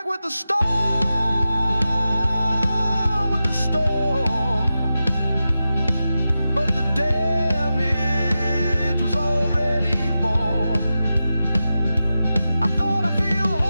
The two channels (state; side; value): inverted; both; correlation -0.92